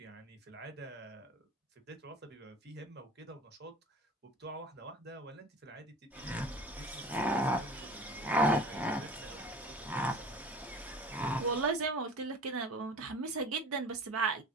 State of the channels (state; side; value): normal; both; correlation 0.40